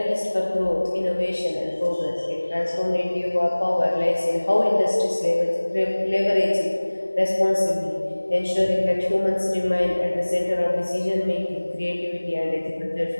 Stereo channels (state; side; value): inverted; both; correlation -1.00